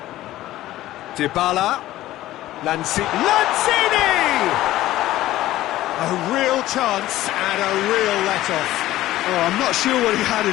Dybala. Lanzini! A real chance and a real let-off. Oh, I'm not sure what he had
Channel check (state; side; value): quieter; right; 15.2 dB